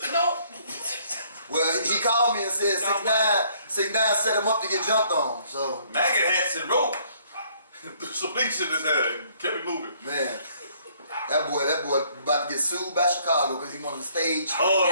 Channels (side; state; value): both; inverted; correlation -0.63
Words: No. Well, he called me and said 6ix9ine set him up to get jumped on. So maggot hats and rope. Some bleach in his head and kept it moving. Man. That boy about to get sued by Chicago because he wanted the stage. Oh,